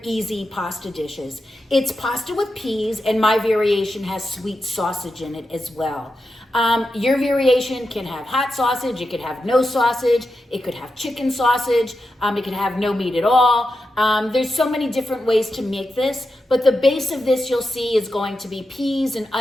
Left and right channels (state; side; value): normal; both; correlation 0.89